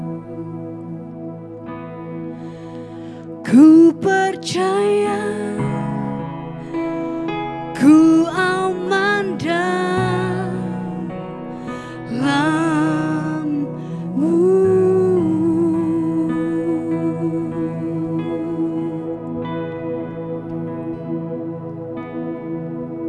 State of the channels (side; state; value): both; identical; correlation 1.00